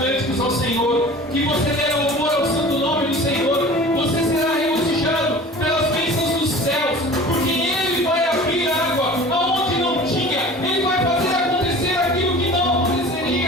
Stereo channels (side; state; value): both; normal; correlation 0.41